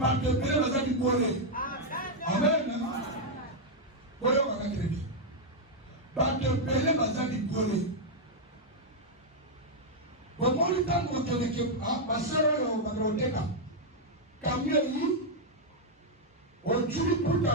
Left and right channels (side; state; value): both; normal; correlation -0.02